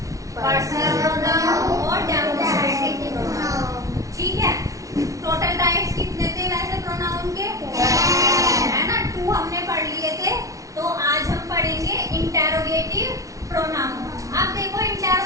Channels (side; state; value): left; late; 0.16 ms